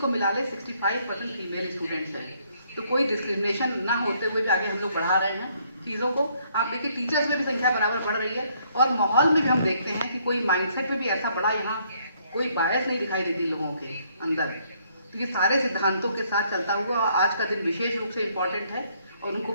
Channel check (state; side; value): inverted; both; correlation -0.68